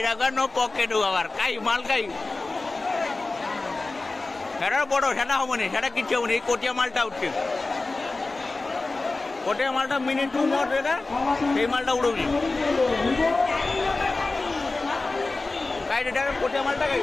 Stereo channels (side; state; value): right; quieter; 3.4 dB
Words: রাখা নো পকেট আবার কাই মাল কাই সেটা বড় সেটা হবনি সেটা কিচ্ছু হবনি এই কোটিয়া মালটা উঠছে কোটিয়া মালটা মিনিট 2 মোট এটা এই মালটা উড়বি কাই এটা কোটিয়া মালটা কাই